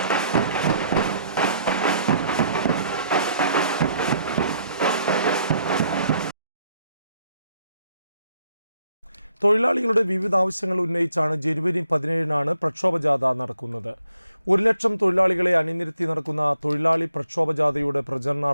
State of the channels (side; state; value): both; inverted; correlation -0.71